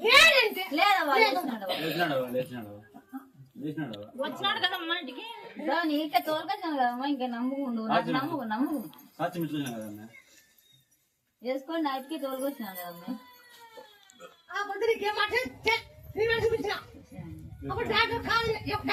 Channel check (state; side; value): identical; both; correlation 1.00